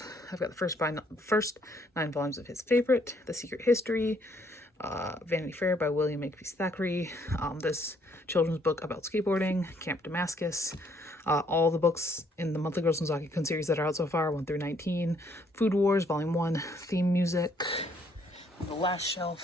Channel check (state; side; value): normal; both; correlation 0.67